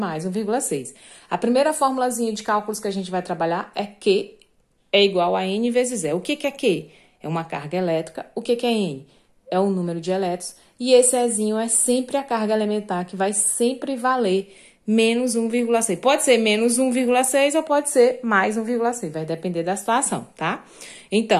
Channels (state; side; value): identical; both; correlation 1.00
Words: 1,6. A primeira formulazinha de cálculos que a gente vai trabalhar é Q é igual a N vezes E. O que é Q? É uma carga elétrica. O que é N? É o número de elétrons. E esse Ezinho é sempre a carga elementar, que vai sempre valer menos 1,6. Pode ser menos 1,6 ou pode ser mais 1,6. Vai depender da situação, tá?